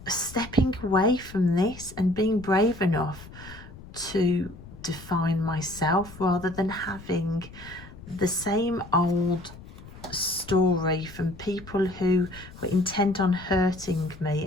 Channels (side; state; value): left; noise; rumble, 17 dB below the sound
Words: stepping away from this and being brave enough to define myself, rather than having the same old story from people who were intent on hurting me